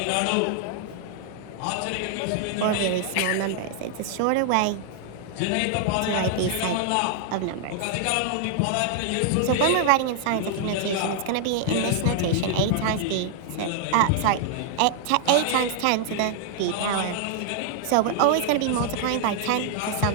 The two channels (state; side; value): different; both; correlation 0.00